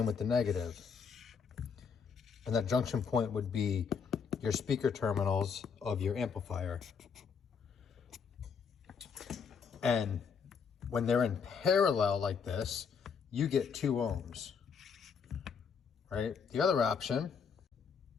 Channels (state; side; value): quieter; right; 6.1 dB